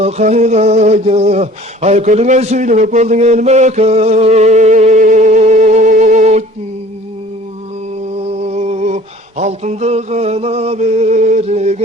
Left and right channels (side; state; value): both; normal; correlation 0.48